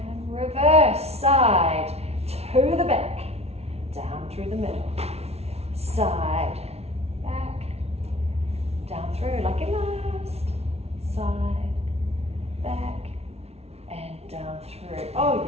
reverse. Side, to the back, down through the middle. Side, back, down through like your last. Side, back, and down through. Oh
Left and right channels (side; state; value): left; late; 0.31 ms